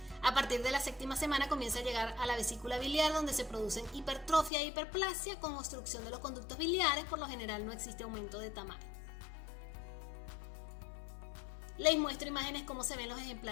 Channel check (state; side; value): drops out; right; at 4.5 s